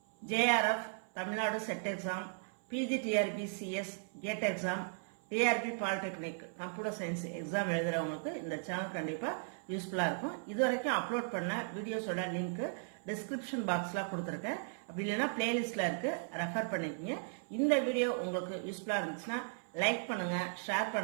JRF, Tamil Nadu Set Exam, PGTRB CS, GATE Exam, TRB Polytechnic, Computer Science Exam எழுதுறவங்களுக்கு இந்த channel கண்டிப்பா யூஸ்ஃபுல்லா இருக்கும். இதுவரைக்கும் upload பண்ண வீடியோஸோட link description பாக்ஸ்ல கொடுத்திருக்கேன். அப்படி இல்லைன்னா பிளேலிஸ்ட்ல இருக்கு, ரெஃபர் பண்ணிக்கங்க. இந்த வீடியோ உங்களுக்கு யூஸ்ஃபுல்லா இருந்துச்சுன்னா லைக் பண்ணுங்க, ஷேர்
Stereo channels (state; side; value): silent; left; 53 dB below the other